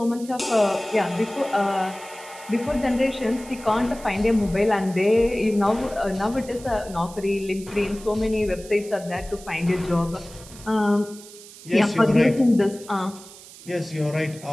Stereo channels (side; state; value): right; noise; hiss, 18 dB below the sound